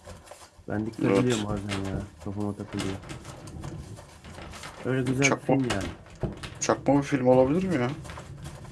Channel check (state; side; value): identical; both; correlation 1.00